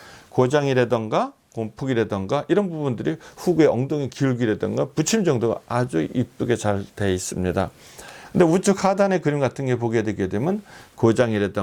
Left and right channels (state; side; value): identical; both; correlation 1.00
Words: 고장이라던가 곰푹이라던가 이런 부분들이 후구의 엉덩이 기울기라던가 붙임 정도가 아주 이쁘게 잘 돼 있습니다. 근데 우측 하단의 그림 같은 게 보게 되게 되면